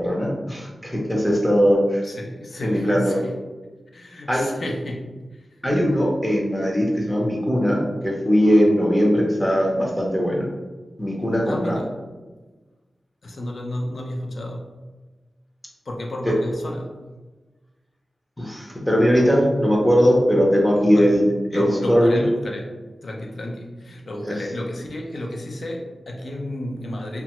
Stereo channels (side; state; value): both; normal; correlation 0.95